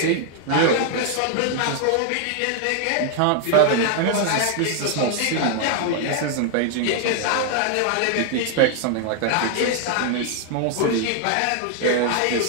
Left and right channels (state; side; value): different; both; correlation 0.00